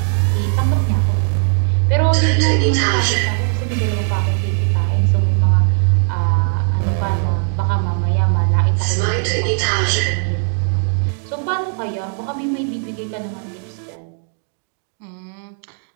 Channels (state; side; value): silent; left; 55 dB below the other